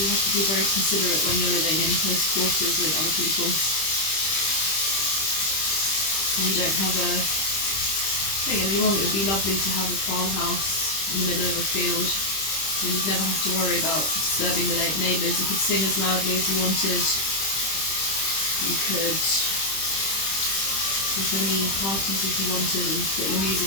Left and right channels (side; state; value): right; late; 25 ms